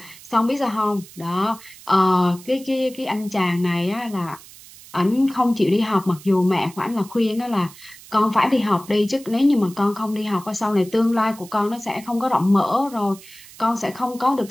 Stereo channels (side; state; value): right; noise; hiss, 20 dB below the sound